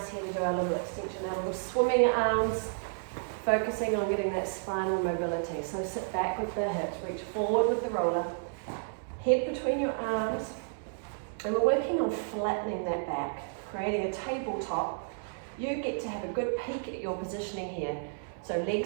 here to do our little extension, our little swimming arms, focusing on getting that spinal mobility. So sit back with the hips, reach forward with the roller, head between your arms, and we're working on flattening that back, creating a tabletop. You get to have a good peek at your positioning here. So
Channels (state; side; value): silent; left; 57 dB below the other